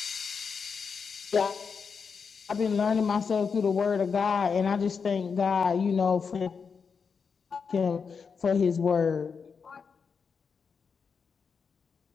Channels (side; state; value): right; quieter; 5.8 dB